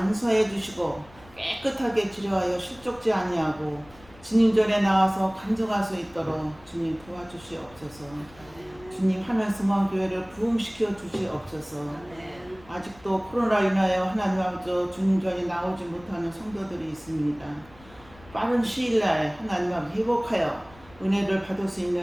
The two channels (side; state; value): left; noise; rumble, 24 dB below the sound